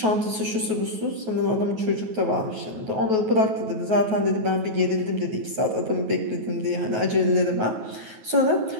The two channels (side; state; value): left; late; 9.3 ms